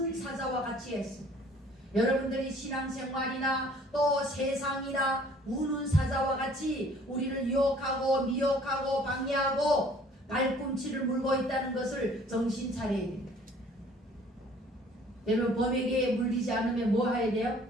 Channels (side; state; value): both; normal; correlation 0.55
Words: 사자와 같이 했습니다. 여러분들이 신앙생활이나 또 세상이나 우는 사자와 같이 우리를 유혹하고 미혹하고 방해하고 발꿈치를 물고 있다는 것을 정신 차려야 됩니다. 여러분 범에게 물리지 않으면 뭐 해야 돼요?